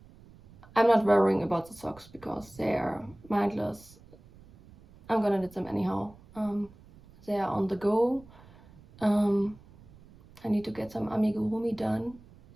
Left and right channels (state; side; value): noise; right; rumble, 24 dB below the sound